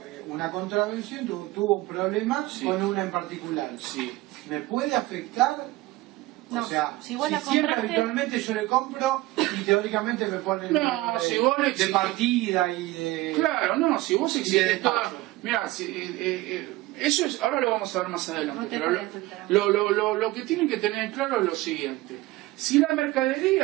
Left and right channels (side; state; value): left; quieter; 18.8 dB